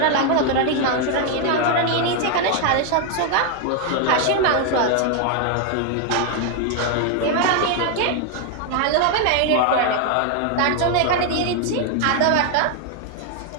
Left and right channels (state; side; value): different; both; correlation 0.01